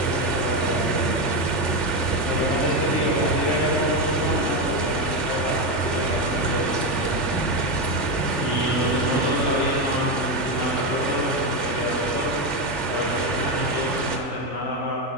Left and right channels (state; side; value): late; right; 3.4 ms